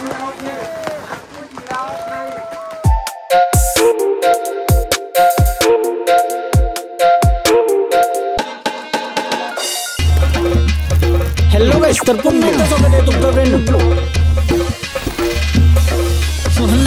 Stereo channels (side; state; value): both; identical; correlation 1.00